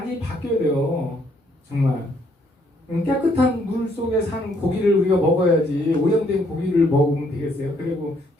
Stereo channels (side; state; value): both; normal; correlation 0.69